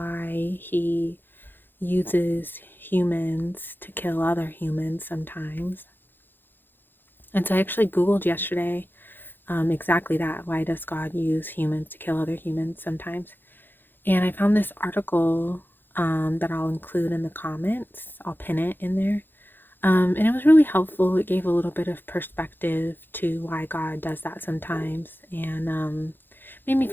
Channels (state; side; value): late; right; 0.097 ms